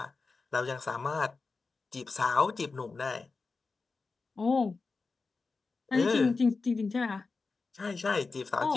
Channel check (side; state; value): right; quieter; 4.2 dB